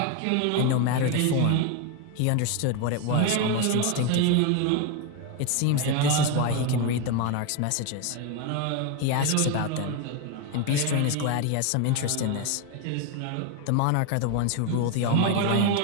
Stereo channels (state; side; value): different; both; correlation 0.01